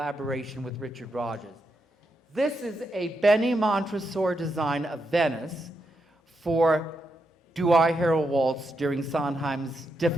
with Richard Rodgers. This is a Benny Montresor design of Venice for Do I Hear a Waltz during Sondheim's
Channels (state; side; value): normal; both; correlation 0.83